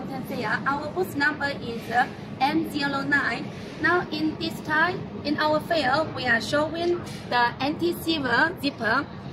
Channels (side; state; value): both; identical; correlation 1.00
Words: Fair. Our booth number is M09. Now in this time, in our fair, we are showing the anti-silver zipper.